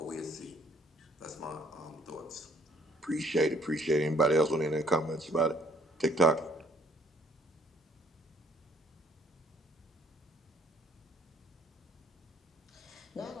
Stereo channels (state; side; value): normal; both; correlation 0.61